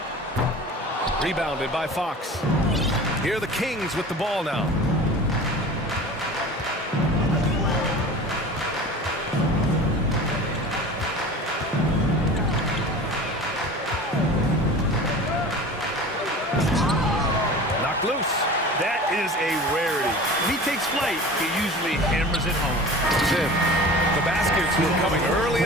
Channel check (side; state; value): both; normal; correlation 0.38